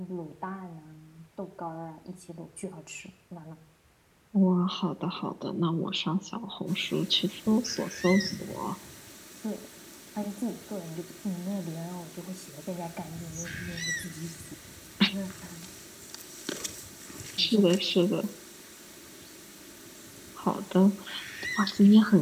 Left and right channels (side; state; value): both; identical; correlation 1.00